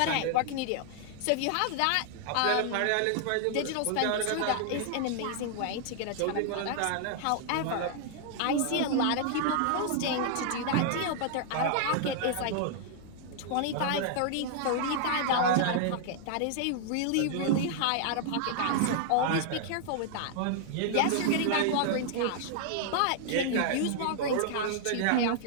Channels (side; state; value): both; different; correlation -0.01